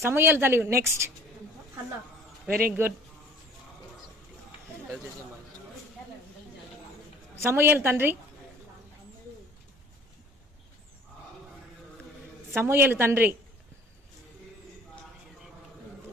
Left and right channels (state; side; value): normal; both; correlation 0.50